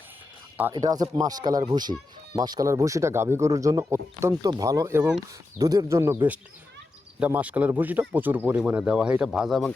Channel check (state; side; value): quieter; right; 3.2 dB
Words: আর এটা আছে মাসকালার ভুসি। মাসকালার ভুসিটা গাভী গরুর জন্য অত্যন্ত ভালো এবং দুধের জন্য বেস্ট। এটা মাসকালার ভুসিটা প্রচুর পরিমাণে দেওয়া হয়। এটা ভাজা এবং